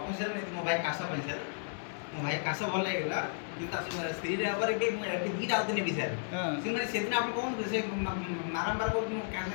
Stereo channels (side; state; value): right; silent; 55 dB below the other